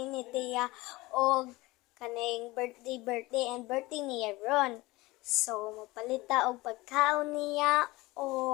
ni Tia og kaning birthday and birthday niya ron. So mapalita og pagkaon niya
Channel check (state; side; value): quieter; right; 20.9 dB